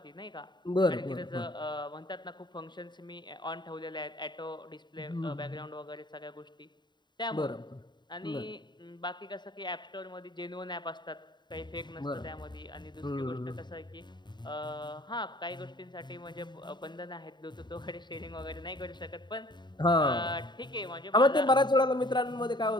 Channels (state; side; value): late; right; 0.22 ms